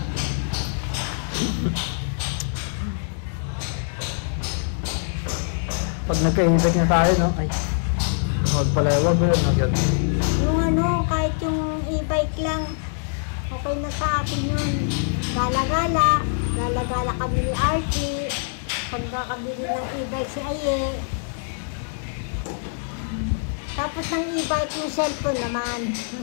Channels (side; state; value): right; silent; 63 dB below the other